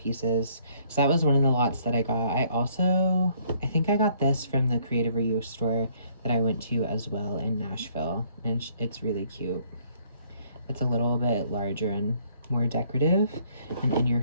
So that was one of the lots that I got. I think I got this from the Creative Reuse store that I went to as well in Nashville, and it's really cute. It's a little bit larger and more decorative and in your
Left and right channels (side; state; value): both; inverted; correlation -0.63